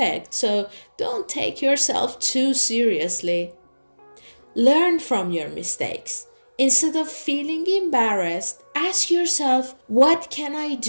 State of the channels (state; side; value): inverted; both; correlation -1.00